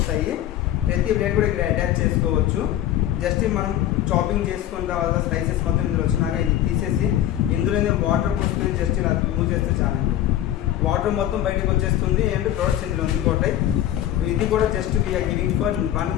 ప్రతి ప్లేట్ కూడా ఇక్కడ అటాచ్ చేసుకోవచ్చు. జస్ట్ మనం చాపింగ్ చేసుకున్న తర్వాత స్లైసెస్ మొత్తం ఇందులో వచ్చినాక ఇది తీసేసి ఇందులోనే వాటర్ పోసుకొని జస్ట్ ఇలా మూవ్ చేస్తే చాలండి. వాటర్ మొత్తం బయటకు వచ్చేస్తుంది. అండ్ ప్రోడక్ట్స్ ఇందులో ఉండిపోతాయి. ఇది కూడా just we are giving for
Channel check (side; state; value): right; quieter; 12.3 dB